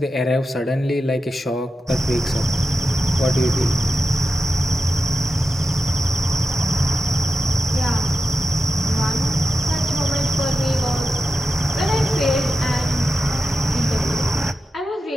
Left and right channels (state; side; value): normal; both; correlation 0.91